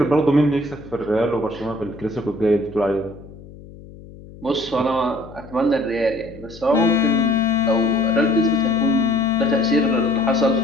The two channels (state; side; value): noise; left; hum, 18 dB below the sound